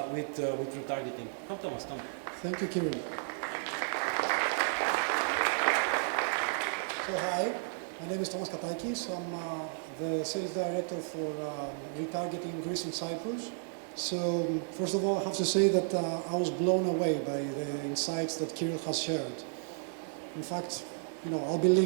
with retargeting. Come, Thomas, come. Thank you, Kiril. So hi, my name is Thomas Katakis. I'm the sales director for retargeting in Greece and Cyprus. So first of all, I have to say that I was blown away by the insights that Kiril has shared. In fact, I'll be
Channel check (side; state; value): left; silent; digital silence